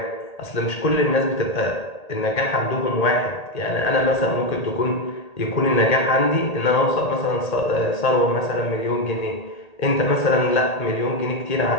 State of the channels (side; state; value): right; late; 1.8 ms